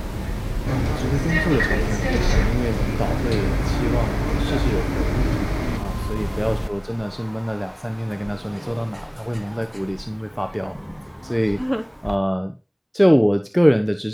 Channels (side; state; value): both; identical; correlation 1.00